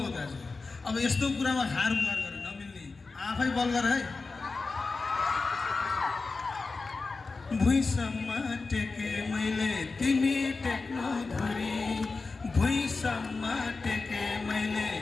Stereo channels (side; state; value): right; quieter; 4.0 dB